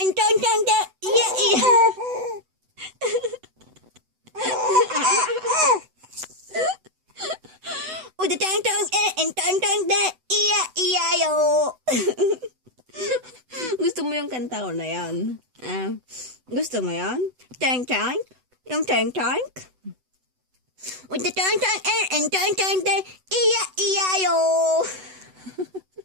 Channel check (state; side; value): late; left; 8.0 ms